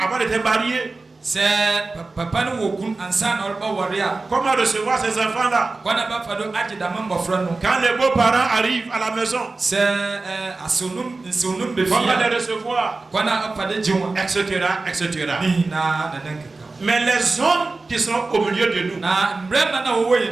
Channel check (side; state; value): left; quieter; 3.5 dB